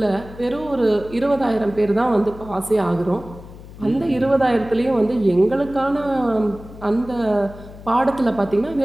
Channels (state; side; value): noise; left; hum, 17 dB below the sound